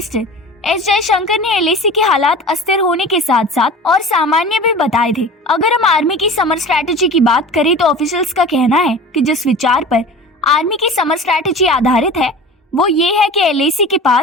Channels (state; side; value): normal; both; correlation 0.37